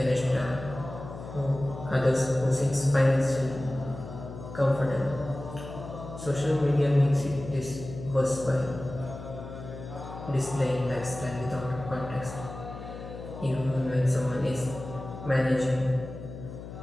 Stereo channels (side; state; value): left; noise; hum, 11 dB below the sound